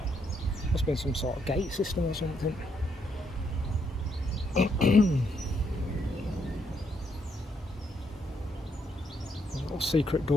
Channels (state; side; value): normal; both; correlation 0.75